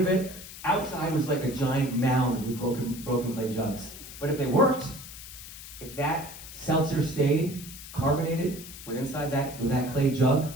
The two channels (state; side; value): noise; left; hiss, 14 dB below the sound